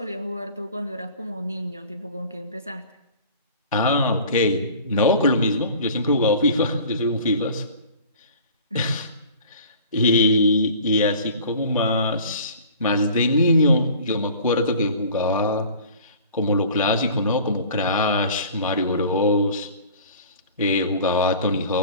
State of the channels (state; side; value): inverted; both; correlation -0.45